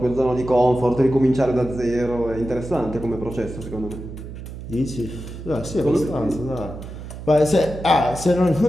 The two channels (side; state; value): right; noise; hum, 11 dB below the sound